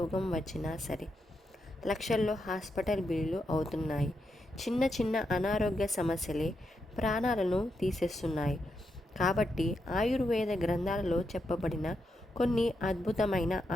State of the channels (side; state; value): both; normal; correlation 0.83